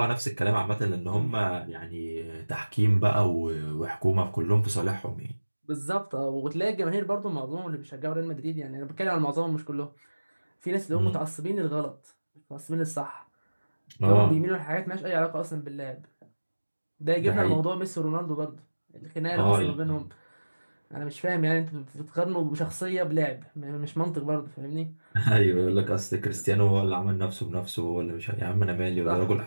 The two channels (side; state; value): both; inverted; correlation -1.00